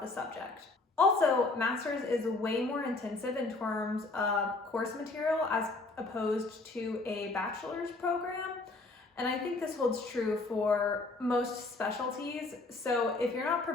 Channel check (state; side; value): quieter; right; 3.3 dB